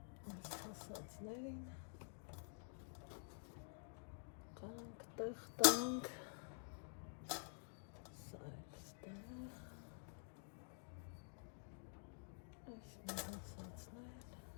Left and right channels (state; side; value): silent; right; digital silence